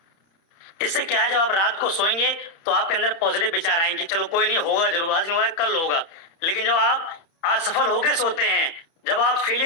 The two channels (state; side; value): late; right; 30 ms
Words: इससे क्या है, जब आप रात को सोएंगे तो आपके अंदर पॉजिटिव विचार आएंगे कि चलो कोई नहीं, होगा जरूर, आज नहीं हुआ कल होगा। लेकिन जब आप असफल होके सोते हैं, जब आप